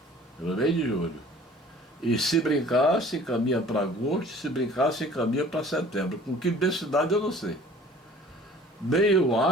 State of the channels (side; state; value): both; normal; correlation 0.49